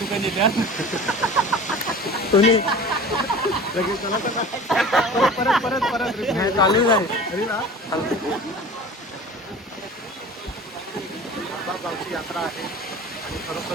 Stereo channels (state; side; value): normal; both; correlation 0.39